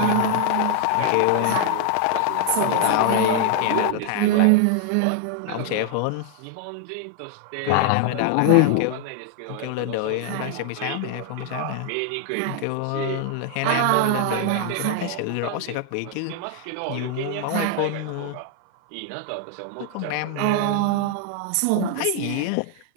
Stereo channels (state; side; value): different; both; correlation 0.00